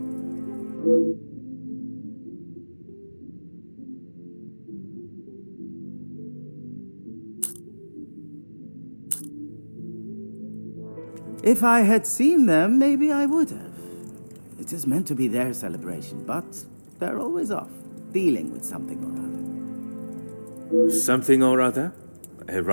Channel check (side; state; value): both; inverted; correlation -1.00